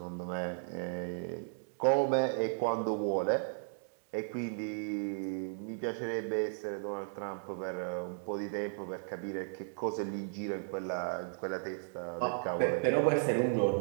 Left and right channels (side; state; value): left; silent; digital silence